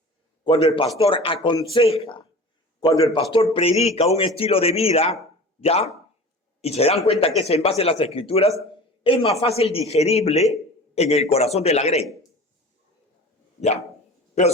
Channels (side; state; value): both; normal; correlation 0.39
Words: cuando el pastor aconseja, cuando el pastor predica un estilo de vida, ¿ya? Y se dan cuenta que es en base a las escrituras, es más fácil digerible en el corazón de la grey. ¿Ya? Pero